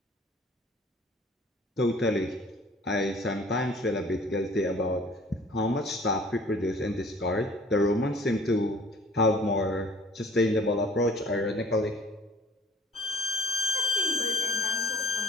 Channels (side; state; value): both; normal; correlation 0.51